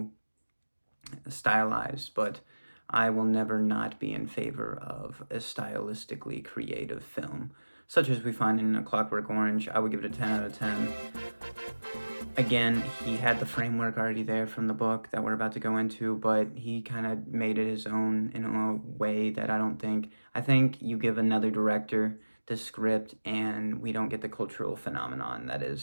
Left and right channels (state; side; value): inverted; both; correlation -1.00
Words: stylized, but I will never not be in favor of a stylistically creative film, such as we find in A Clockwork Orange. I would give it a 10 out of 10. Again, he had the framework already there from the book that we're about to go into, but he kind of made it his own in a way that I think you give another director the script and we don't get the cultural phenomenon that